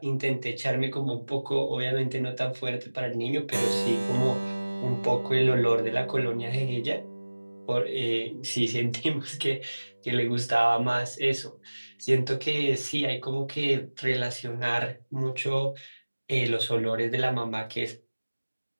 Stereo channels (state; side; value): inverted; both; correlation -1.00